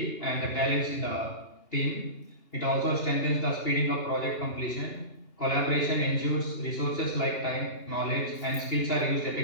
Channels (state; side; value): late; right; 2.8 ms